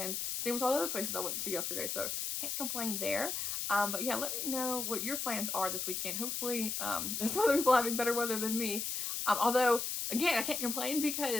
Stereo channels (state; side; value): noise; left; hiss, 2 dB below the sound